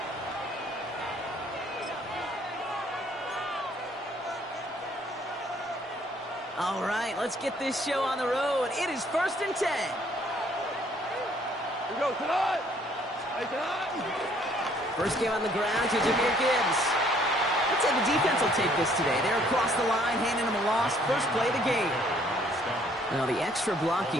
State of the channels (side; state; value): both; normal; correlation 0.62